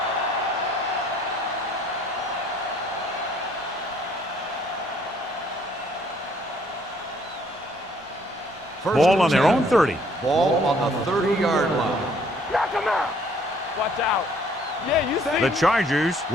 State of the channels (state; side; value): normal; both; correlation 0.62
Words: Ball on their own 30. Ball on the 30-yard line. Knock him out. Watch out. Yeah, you see The Chargers